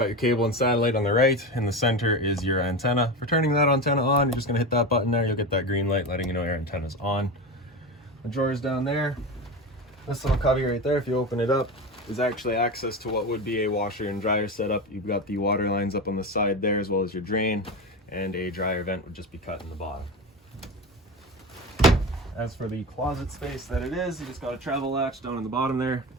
your cable and satellite on the right. In the center is your antenna. For turning that antenna on, you're just gonna hit that button there. You'll get that green light letting you know your antenna's on. The drawers down there. This little cubby right there, if you open it up, is actually access to what would be a washer and dryer setup. You've got the water lines up on the side there, as well as your drain, and a dryer vent would just be cut in the bottom. As for the closet space that it is, you just got a travel latch down in the bottom there.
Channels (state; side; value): normal; both; correlation 0.23